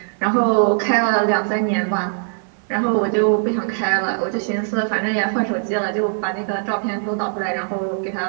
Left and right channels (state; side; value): silent; left; 59 dB below the other